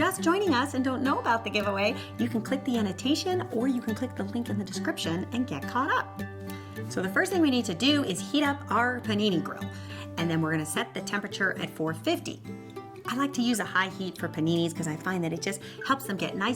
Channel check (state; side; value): identical; both; correlation 1.00